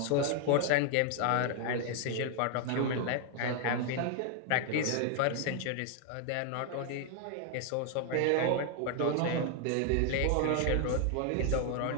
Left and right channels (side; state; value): both; different; correlation 0.00